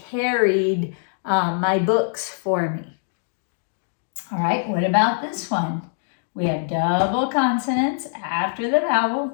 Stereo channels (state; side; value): silent; right; digital silence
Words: carried my books for me. All right, what about this one? We have double consonants after the vowel.